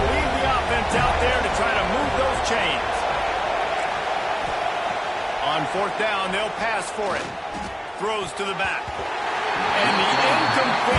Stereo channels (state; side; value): identical; both; correlation 1.00